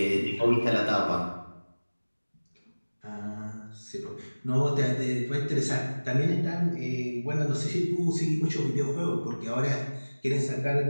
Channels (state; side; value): inverted; both; correlation -1.00